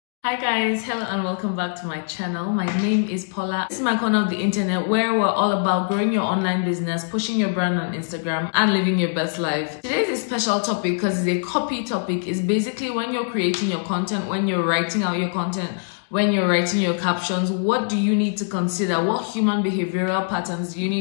Hi guys, hello and welcome back to my channel. My name is Paula. This is my corner of the internet where we're all about growing your online business, pushing your brand on Instagram, and living your best life. Today's a special topic because it's a copy topic. It's basically when you're creating your content, when you're writing out your content, when you're writing your captions, what do you need to consider? What human behavioral patterns do you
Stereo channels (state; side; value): silent; right; digital silence